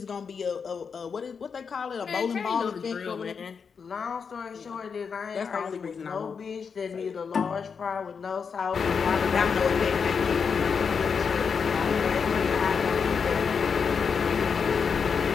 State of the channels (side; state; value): right; quieter; 6.0 dB